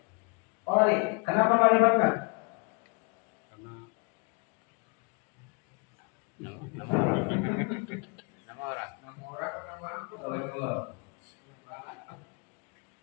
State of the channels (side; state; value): right; quieter; 32.3 dB